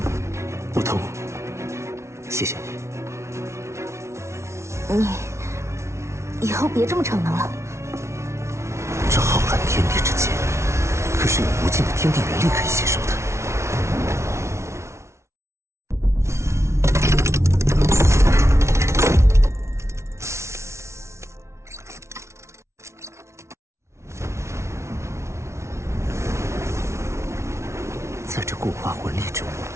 不痛，谢谢你。你以后别这么逞能了。这浩瀚天地之间，可是有无尽的天地元力可以吸收的。在这固化魂力中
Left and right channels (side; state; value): left; late; 0.13 ms